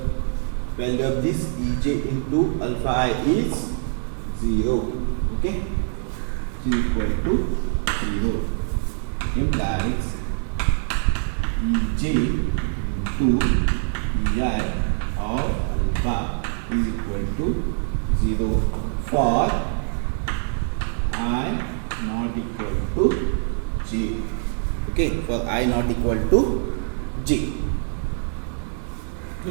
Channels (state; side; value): silent; left; 63 dB below the other